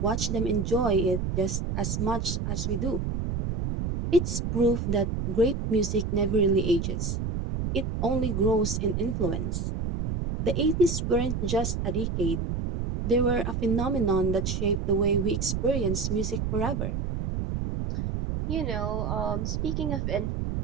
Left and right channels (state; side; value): noise; right; rumble, 2 dB below the sound